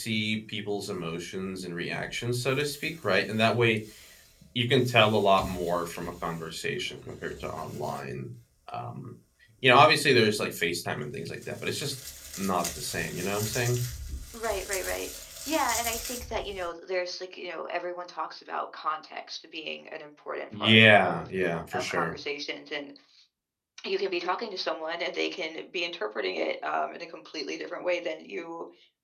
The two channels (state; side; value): identical; both; correlation 1.00